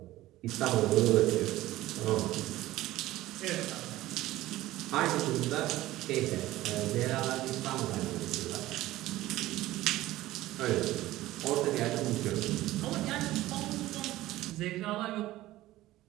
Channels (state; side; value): quieter; left; 16.3 dB